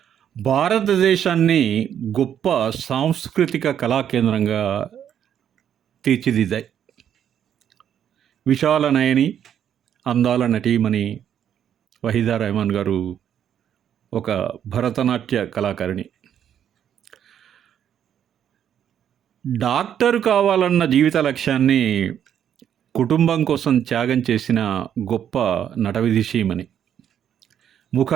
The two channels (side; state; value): left; quieter; 9.4 dB